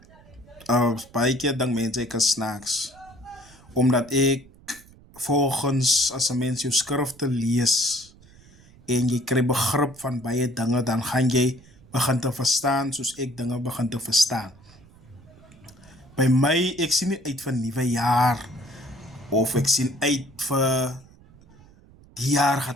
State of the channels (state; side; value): noise; right; rumble, 25 dB below the sound